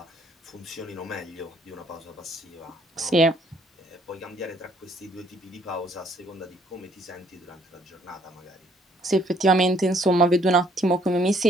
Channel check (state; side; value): normal; both; correlation 0.65